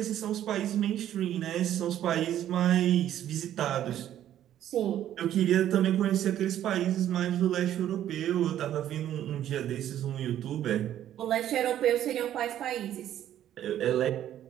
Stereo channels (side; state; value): left; quieter; 11.5 dB